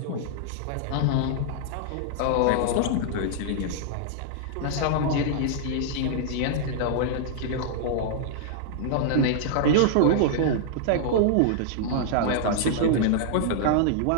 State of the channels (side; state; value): both; different; correlation -0.01